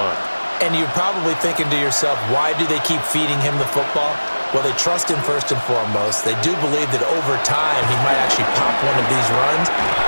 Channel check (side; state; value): both; inverted; correlation -1.00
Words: And you're probably thinking to yourself, why do they keep feeding him the football? Well, they trust him first and foremost. They do believe that over time he might actually pop one of these runs.